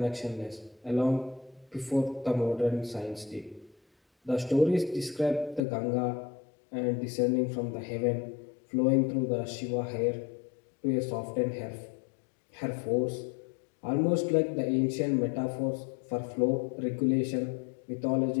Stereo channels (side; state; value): right; drops out; at 5.6 s